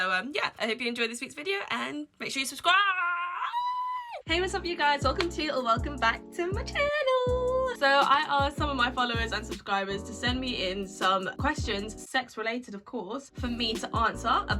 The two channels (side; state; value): both; identical; correlation 1.00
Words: yeah, I hope you enjoyed this week's video and make sure you subscribe. Hey, what's up you guys? Welcome to or welcome back to my channel. So I asked some of my followers and subscribers to send me in some questions, sex related of course, for me to answer